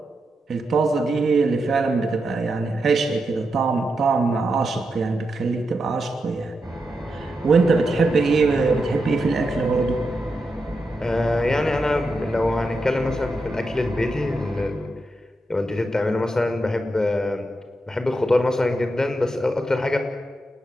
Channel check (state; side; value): normal; both; correlation 0.86